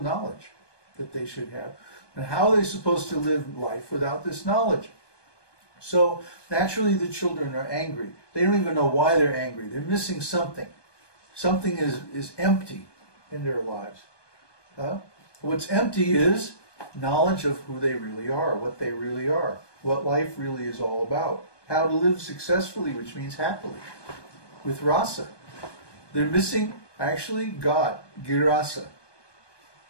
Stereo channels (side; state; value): right; late; 1.2 ms